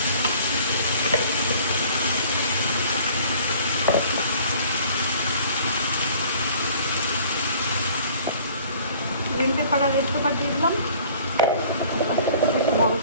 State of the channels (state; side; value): inverted; both; correlation -0.51